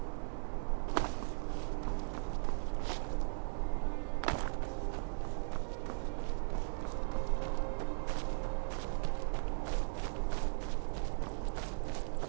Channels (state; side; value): silent; left; 52 dB below the other